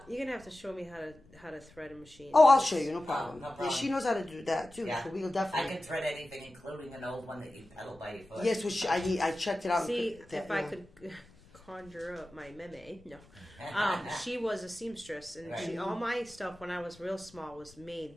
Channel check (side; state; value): left; noise; rumble, 25 dB below the sound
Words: You're gonna have to show me how to thread a machine. Oh, I'll show you, no problem. No problem. Yeah, she knows how to do that too, so we'll definitely. I can thread anything, including an old one that you pedal by your foot. Yes, which I checked it out. See, if I could conjure up my meme, no. She was a seamstress, and all my stuff when I was real small was made